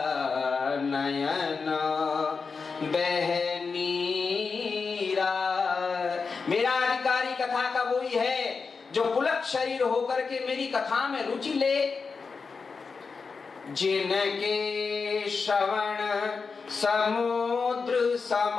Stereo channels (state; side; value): quieter; right; 4.9 dB